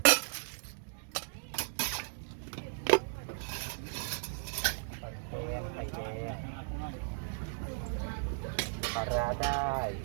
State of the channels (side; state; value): left; silent; digital silence